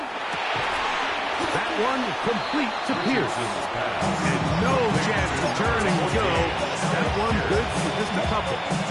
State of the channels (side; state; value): both; identical; correlation 1.00